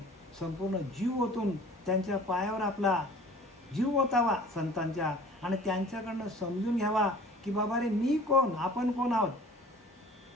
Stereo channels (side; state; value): both; normal; correlation 0.47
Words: संपूर्ण जीव ओतून त्यांच्या पायावर आपला जीव ओतावा संतांच्या, आणि त्यांच्याकडनं समजून घ्यावा की बाबा रे मी कोण, आपण कोण आहोत,